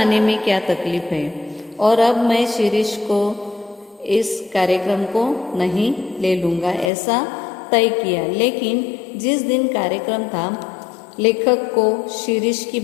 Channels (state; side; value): drops out; right; at 6.9 s